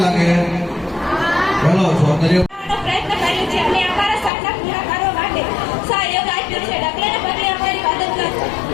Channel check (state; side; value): drops out; right; at 4.3 s